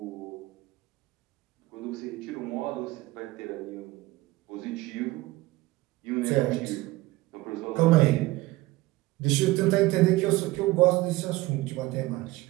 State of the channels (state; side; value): quieter; left; 19.1 dB